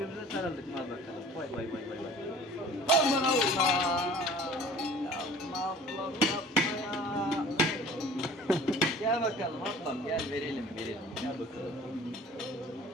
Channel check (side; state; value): both; normal; correlation 0.46